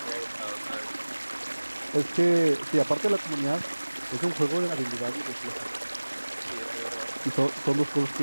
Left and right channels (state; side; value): inverted; both; correlation -1.00